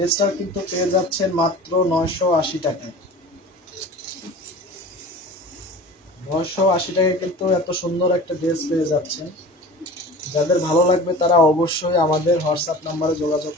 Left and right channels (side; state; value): both; normal; correlation 0.38